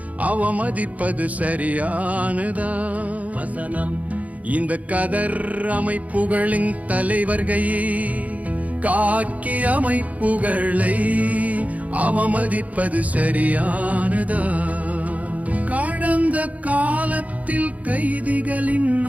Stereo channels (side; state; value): left; late; 0.071 ms